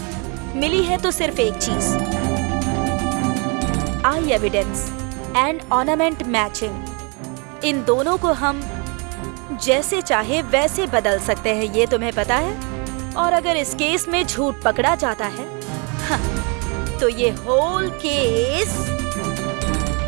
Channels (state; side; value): quieter; left; 33.5 dB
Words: मिली है तो सिर्फ एक चीज, आई एविडेंस एंड ऑर्नामेंट मैचिंग। इन दोनों को हम जैसे चाहे वैसे बदल सकते हैं, ये तुम्हें पता है। और अगर इस केस में झूठ पकड़ा जाता है हाँ, तो ये होल केस